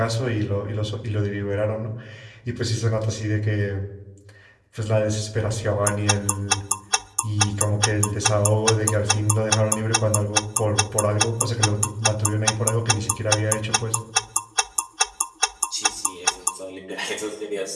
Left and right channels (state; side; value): identical; both; correlation 1.00